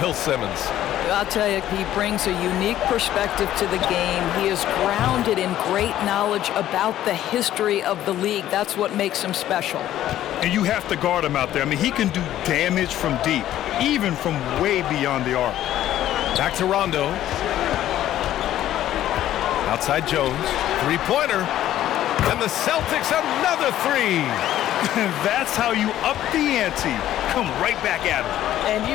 Bill Simmons. I'll tell you, he brings a unique perspective to the game. He is grounded in great knowledge about the history of the league. That's what makes him special. And you have to guard him out there. I mean, he can do damage from deep, even from way beyond the arc. Back to Rondo. Outside Jones. Three-pointer. And the Celtics another three. That's how you up the ante. Come right back at him. And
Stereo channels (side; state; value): right; quieter; 12.7 dB